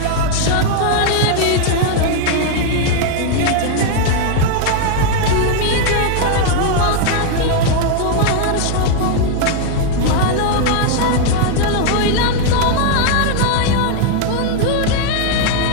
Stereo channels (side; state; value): both; different; correlation 0.00